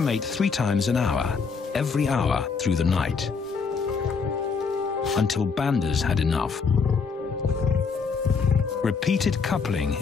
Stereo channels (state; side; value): quieter; right; 5.3 dB